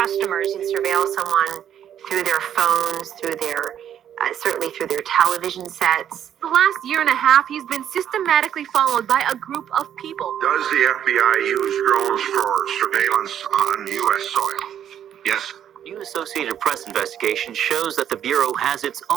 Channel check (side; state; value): left; quieter; 9.8 dB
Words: You can surveil someone through their phones, through their, certainly through their television sets. The last year and a half, he's been systematically followed by a group of people. Does the FBI use drones for surveillance on U.S. soil? Yes. New Associated Press investigation shows that the Bureau has its